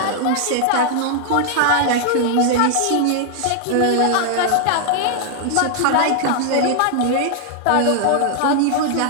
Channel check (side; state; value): both; different; correlation 0.00